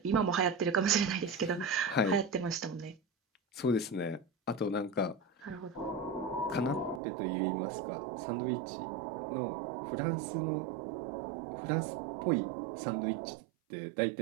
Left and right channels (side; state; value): left; drops out; at 7.0 s